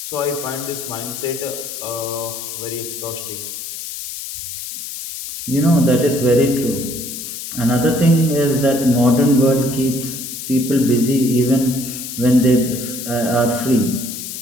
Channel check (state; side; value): noise; left; hiss, 8 dB below the sound